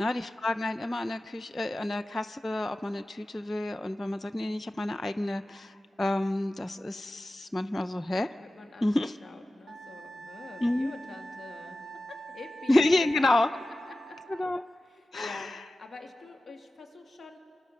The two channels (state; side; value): normal; both; correlation 0.95